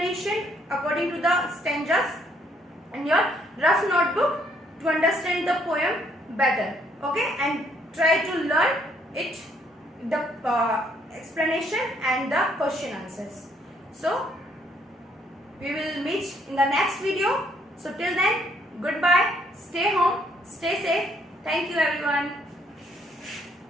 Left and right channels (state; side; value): normal; both; correlation 0.69